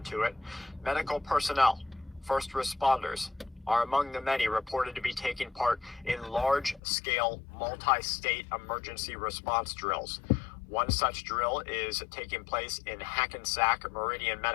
to it. Medical personnel, first responders, are among the many reported to be taking part in large-scale, multi-state emergency response drills. One such drill is taking place in Hackensack Meridian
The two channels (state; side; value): drops out; right; at 6.8 s